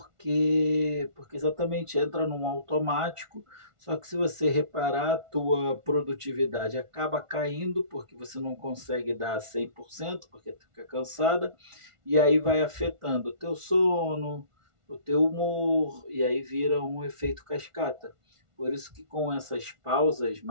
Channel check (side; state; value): left; late; 1.4 ms